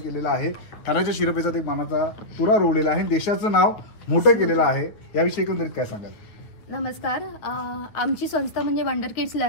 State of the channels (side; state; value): right; late; 9.5 ms